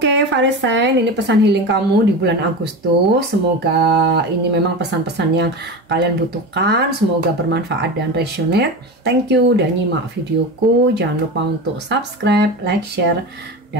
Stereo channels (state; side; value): normal; both; correlation 0.25